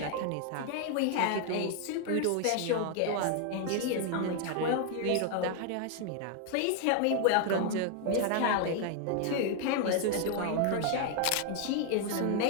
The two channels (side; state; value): both; different; correlation 0.00